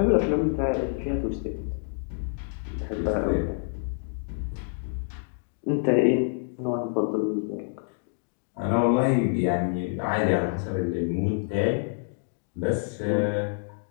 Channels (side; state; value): right; silent; 60 dB below the other